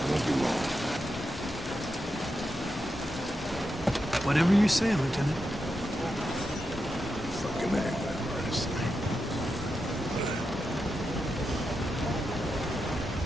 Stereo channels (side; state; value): both; normal; correlation 0.87